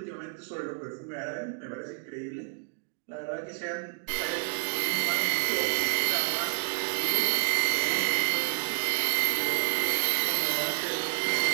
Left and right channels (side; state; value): left; silent; 58 dB below the other